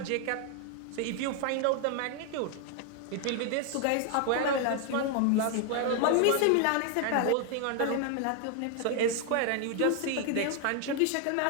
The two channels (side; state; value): both; different; correlation 0.00